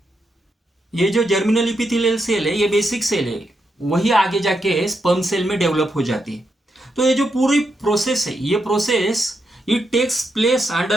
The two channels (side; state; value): both; normal; correlation 0.83